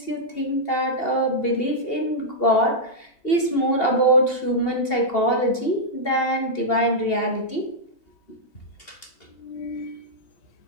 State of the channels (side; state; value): right; late; 2.8 ms